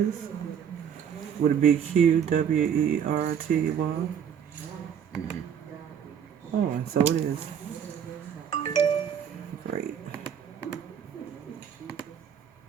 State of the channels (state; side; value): quieter; left; 8.2 dB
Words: Would it be QWERTY? Oh, and so it is. Great.